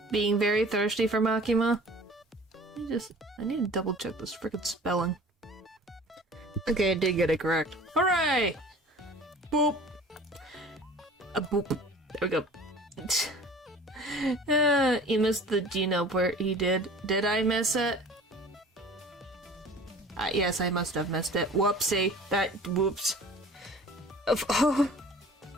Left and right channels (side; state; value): both; normal; correlation 0.45